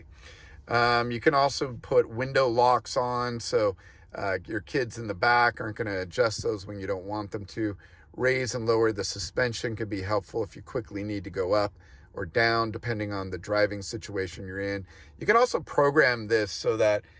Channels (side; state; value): both; identical; correlation 1.00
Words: You can also put window locks on, so your kids in the back aren't going to adjust those when you don't want them to. Raise and lower the suspension could be helpful if you quickly need to go up or down, depending on the driving situation you're in. You can also program this so that